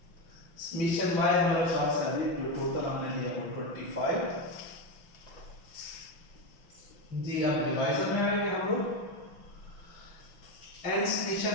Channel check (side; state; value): right; late; 6.0 ms